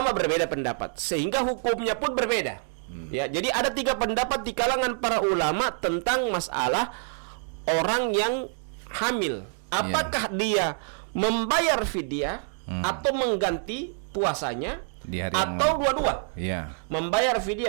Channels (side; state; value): left; silent; 57 dB below the other